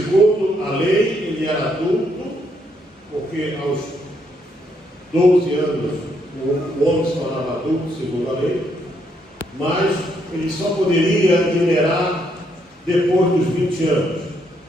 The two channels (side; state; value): both; normal; correlation 0.74